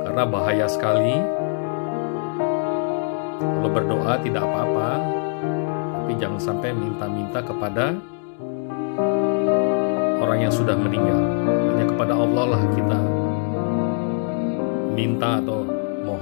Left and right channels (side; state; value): right; silent; digital silence